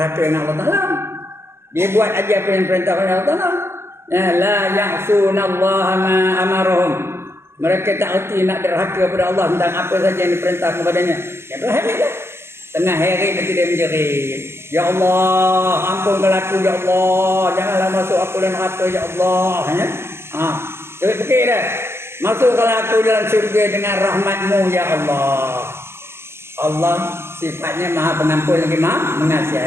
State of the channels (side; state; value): left; late; 0.12 ms